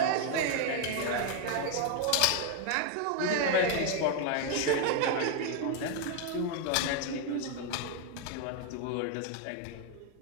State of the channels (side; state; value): both; different; correlation 0.01